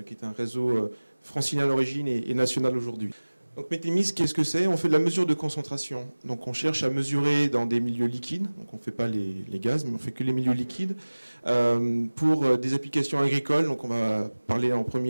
qui est un réseau francilien à l'origine et national aujourd'hui. Donc Métémis, qu'est-ce que c'est? On fait de la mesure de concentration. Donc on cherche à mesurer dans des milieux liquides, donc on ne fait pas les gaz, mais on fait que les milieux liquides, pour des applications agricoles. Donc on va parler en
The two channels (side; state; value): both; inverted; correlation -1.00